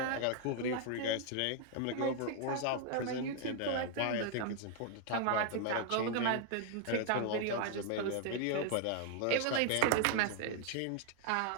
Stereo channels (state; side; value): different; both; correlation 0.00